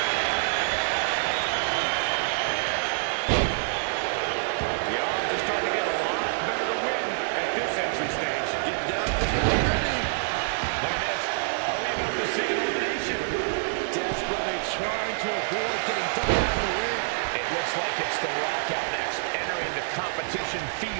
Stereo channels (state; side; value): silent; left; digital silence